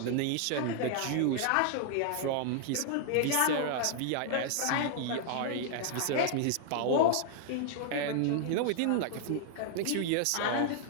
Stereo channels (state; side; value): different; both; correlation 0.00